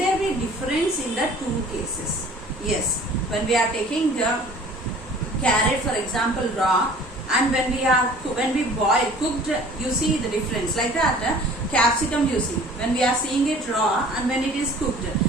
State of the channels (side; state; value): both; normal; correlation 0.48